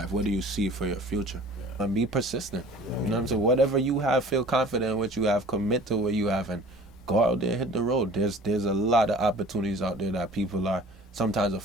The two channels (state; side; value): normal; both; correlation 0.46